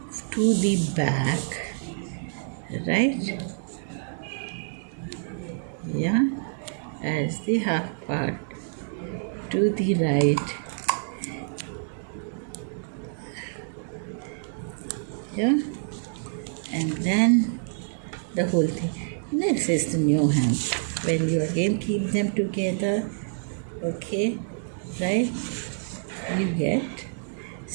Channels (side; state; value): left; silent; digital silence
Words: to the back, right? Yeah, as the half part to the right. Yeah, and then the whole thing. This is the new hem. When you again keep them together, okay, right? You get,